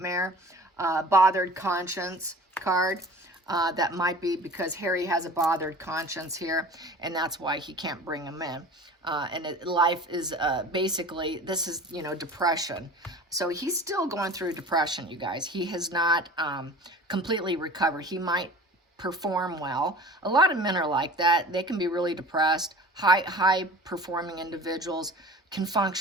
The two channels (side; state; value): both; normal; correlation 0.41